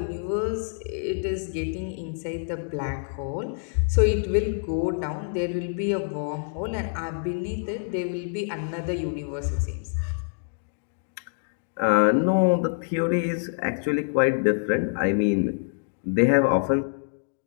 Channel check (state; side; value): silent; right; digital silence